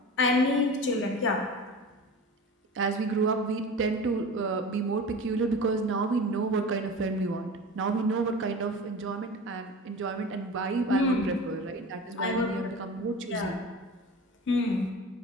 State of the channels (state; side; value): normal; both; correlation 0.34